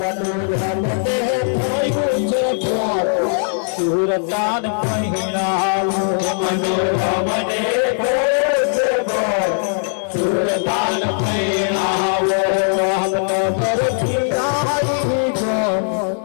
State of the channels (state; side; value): silent; right; 62 dB below the other